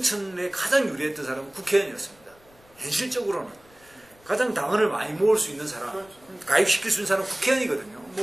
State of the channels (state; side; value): noise; left; rumble, 28 dB below the sound